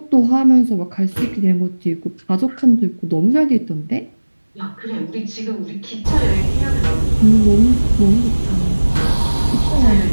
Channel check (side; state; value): both; inverted; correlation -1.00